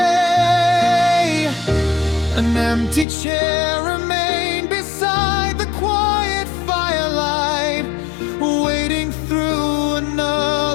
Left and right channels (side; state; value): right; drops out; at 3.1 s